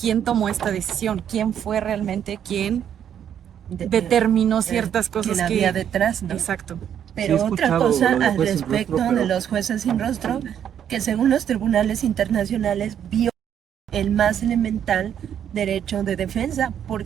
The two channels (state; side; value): quieter; left; 9.2 dB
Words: tomó esta decisión, quién fue realmente quien determinó ciertas cosas quien que... había detrás, ¿no? Exacto. Pero Sí, he otra escuchado cosa lo de al juez sin respecto rostro, de pero- los jueces sin rostro, que según los tribunales internacionales viola el más elemental derecho de defensa,